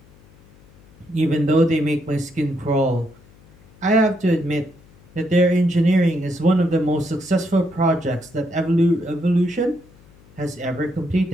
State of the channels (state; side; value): noise; left; hum, 27 dB below the sound